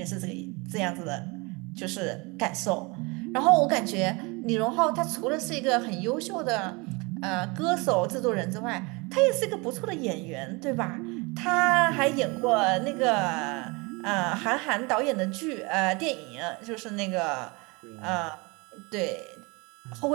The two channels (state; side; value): quieter; left; 27.3 dB